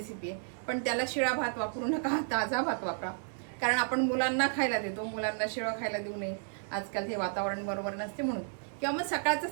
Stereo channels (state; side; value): silent; left; 56 dB below the other